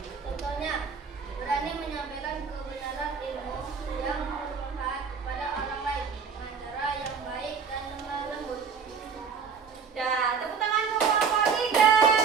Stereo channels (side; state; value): left; quieter; 6.0 dB